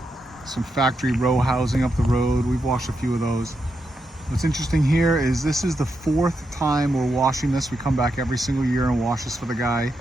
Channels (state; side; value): normal; both; correlation 0.84